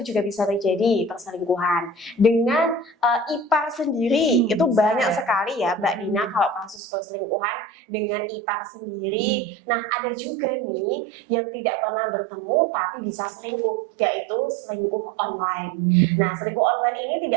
juga bisa terjadi perselingkuhan. Dengan ipar sendiri, itu banyak sekali ya Mbak Dina kalau kasus perselingkuhan dengan ipar sendiri. Nah, ada juga nih yang tidak pernah bertemu tapi bisa selingkuh, yaitu selingkuh online. Nah, selingkuh online ini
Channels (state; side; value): drops out; left; at 6.8 s